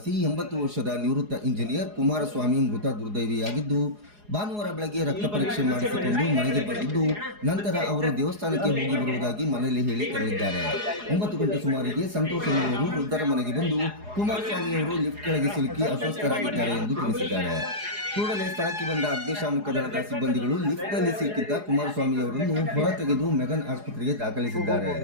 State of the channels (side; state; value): left; late; 4.8 ms